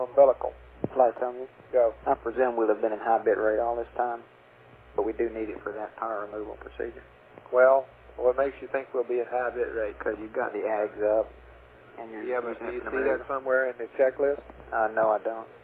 Flight, tell me. Go. I presume we'll have been in high bit rate all this time, but we do need it for that power removal procedure. Well, what makes you think we'll be in high bit rate? Because you've got the AGs up, and you're yeah, but do you see that somewhere in the checklist? No, I don't.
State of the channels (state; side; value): identical; both; correlation 1.00